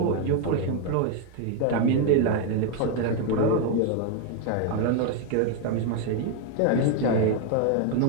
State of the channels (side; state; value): both; different; correlation 0.01